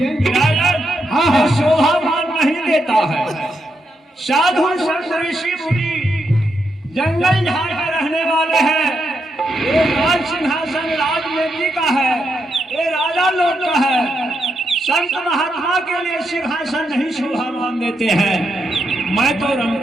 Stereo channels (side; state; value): both; normal; correlation 0.82